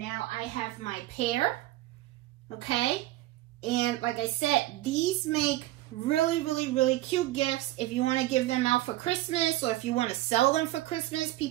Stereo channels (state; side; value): quieter; left; 16.3 dB